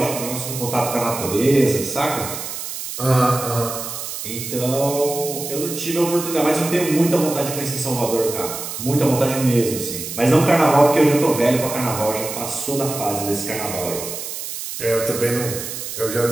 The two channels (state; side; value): noise; right; hiss, 7 dB below the sound